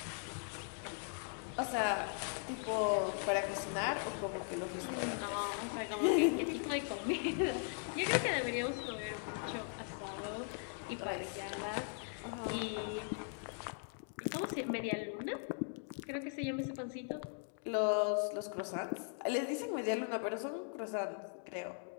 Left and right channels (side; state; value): right; silent; 52 dB below the other